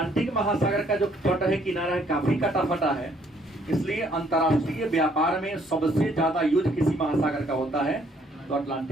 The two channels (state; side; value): normal; both; correlation 0.65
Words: महासागर का जो तट है, किनारा है, काफी कटा फटा है, इसलिए अंतर्राष्ट्रीय व्यापार में सबसे ज्यादा युद्ध किसी महासागर का होता है? तो